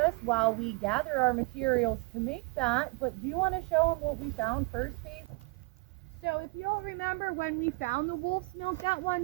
while we gather our materials to make that. But do you want to show them what we found first, Paige? So if you'll remember when we found the wolf's milk that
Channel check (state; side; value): quieter; left; 28.1 dB